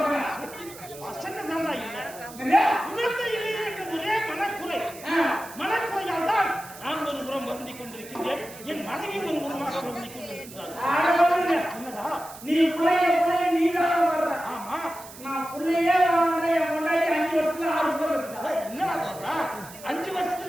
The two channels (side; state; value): right; noise; hiss, 17 dB below the sound